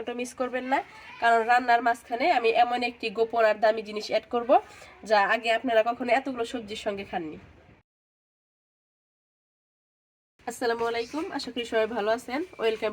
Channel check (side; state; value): both; identical; correlation 1.00